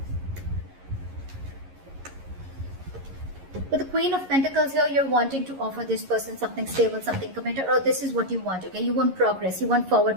With the Queen of Pentacles here, you're wanting to offer this person something stable, something committed, or this is what you want, okay? You want progress, you want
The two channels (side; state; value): left; late; 11 ms